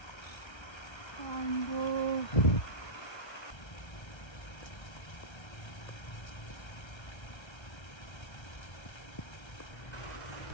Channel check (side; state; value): right; late; 1.3 ms